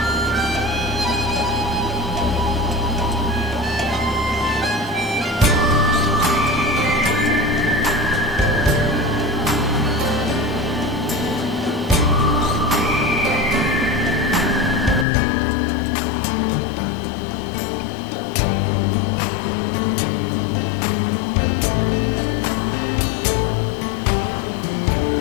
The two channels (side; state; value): right; drops out; at 15.1 s